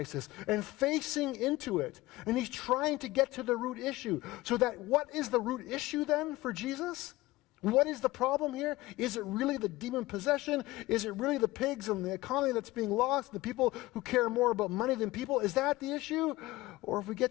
and facing into it. And he's trying to get to the root issue. So that what is the root issue then for Jesus? What is the problem here? Is it really the demon possession? Is it really the pigs and the economy that's being lost? The people who care more about money than people? Is that the issue? Or if we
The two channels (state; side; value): quieter; right; 18.9 dB